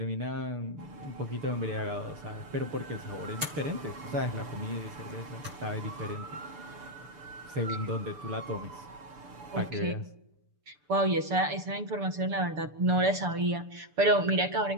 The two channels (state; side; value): late; left; 6.7 ms